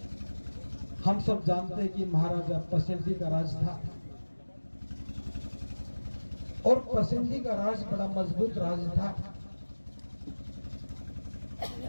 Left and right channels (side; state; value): both; inverted; correlation -1.00